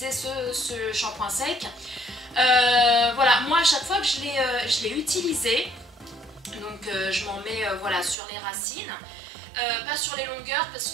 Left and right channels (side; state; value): left; drops out; at 8.2 s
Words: ce shampoing sec. Voilà, moi à chaque fois que je l'ai utilisé, donc je m'en mets voilà, sur les racines, pas sur les longueurs parce